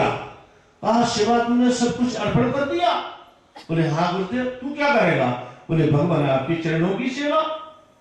कहा शिवा तुमने सब कुछ अर्पण कर दिया? बोले हाँ गुरुदेव। तू क्या करेगा? बोले भगवान आपके चरणों की सेवा,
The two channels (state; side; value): identical; both; correlation 1.00